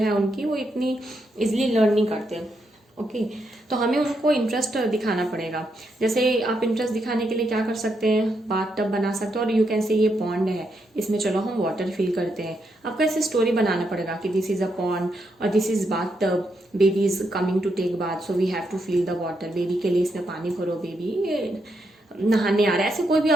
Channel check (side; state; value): both; normal; correlation 0.80